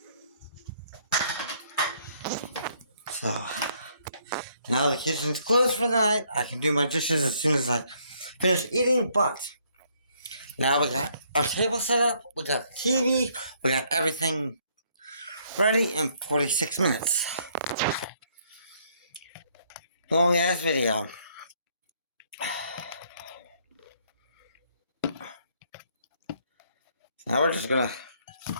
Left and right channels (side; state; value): both; inverted; correlation -0.68